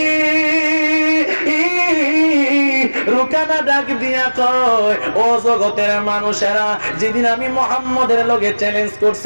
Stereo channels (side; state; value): both; inverted; correlation -1.00